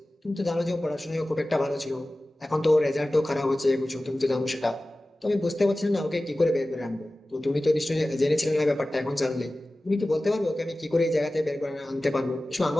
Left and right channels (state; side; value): normal; both; correlation 0.96